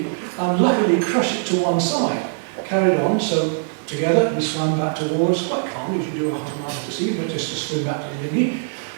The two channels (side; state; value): left; silent; 64 dB below the other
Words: and luckily crush it to one side. Carried on, so together we swam back towards, quite calmly, as you do a half a mile to sea, but just to swim back to the dinghy.